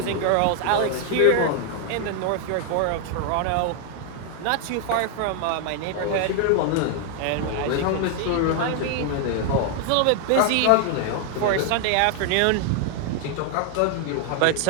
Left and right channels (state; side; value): different; both; correlation 0.00